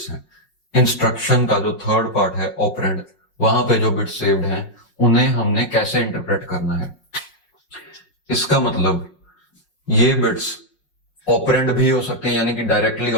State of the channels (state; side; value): late; right; 5.5 ms